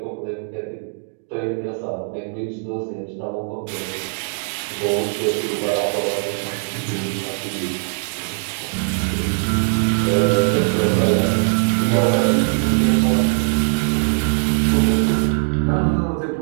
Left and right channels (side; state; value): left; silent; digital silence